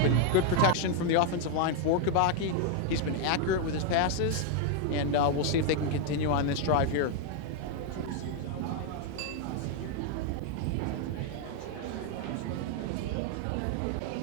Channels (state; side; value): different; both; correlation 0.01